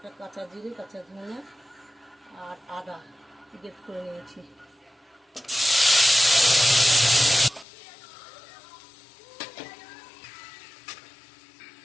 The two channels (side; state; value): right; drops out; at 7.7 s